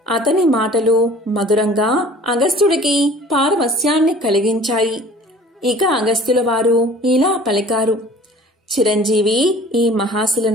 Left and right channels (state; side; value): normal; both; correlation 0.47